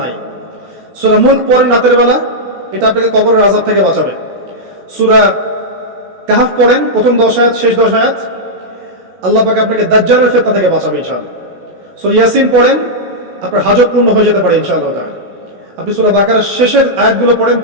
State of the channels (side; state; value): left; late; 16 ms